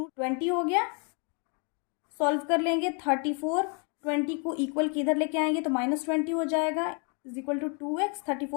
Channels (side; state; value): right; quieter; 37.0 dB